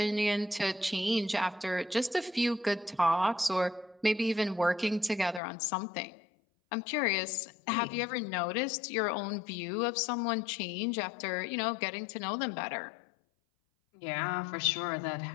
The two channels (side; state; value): right; drops out; at 5.4 s